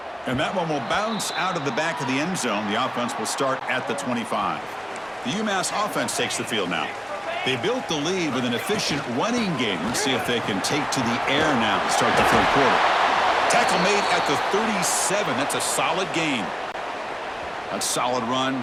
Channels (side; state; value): both; identical; correlation 1.00